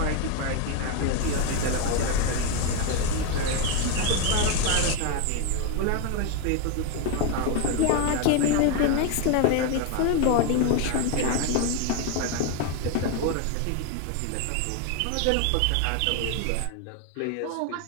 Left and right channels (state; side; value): different; both; correlation 0.01